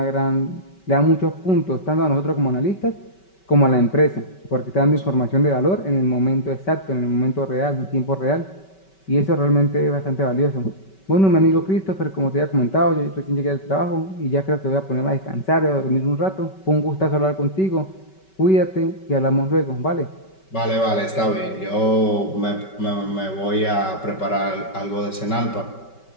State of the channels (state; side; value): late; right; 5.2 ms